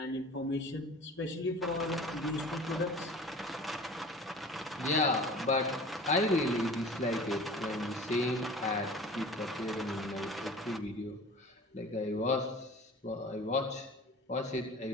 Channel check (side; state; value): both; normal; correlation 0.41